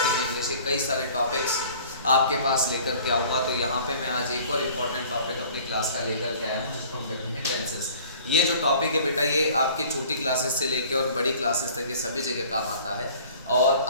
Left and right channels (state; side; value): inverted; both; correlation -0.49